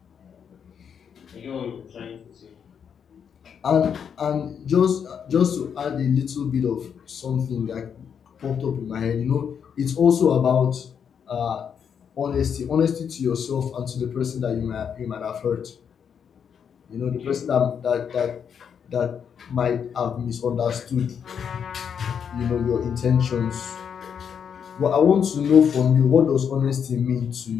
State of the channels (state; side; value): quieter; right; 7.5 dB